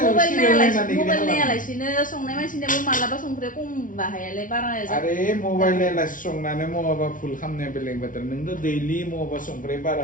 मबाइल नायालासिनो संनाय मानसिनाबो मालाबा संख्रिया खम बाहायालाय बारा आरे मबाइल नायालासे संनानै मबाबा फुल खालामनाया बेलेग बाथ्रा नोंथ' दैलि मबाबा संख्रि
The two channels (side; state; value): right; late; 0.38 ms